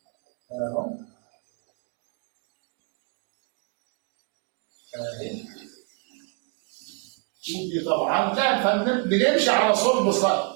اهي. ودي طبعا كان بنمشي على صلب السطر،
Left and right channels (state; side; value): quieter; left; 32.8 dB